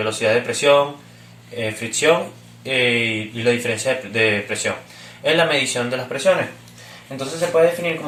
de presión, fricción y la diferencia de presión. Es la medición de las presiones. Entonces se puede definir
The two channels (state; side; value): identical; both; correlation 1.00